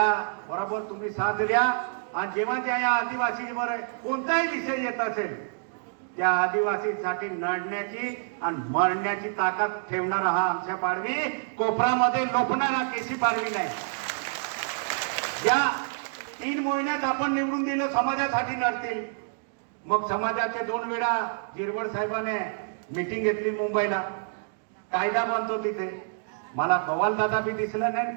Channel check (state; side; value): silent; left; digital silence